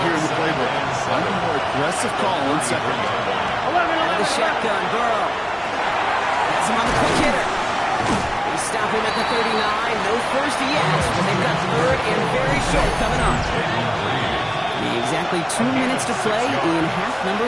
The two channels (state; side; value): identical; both; correlation 1.00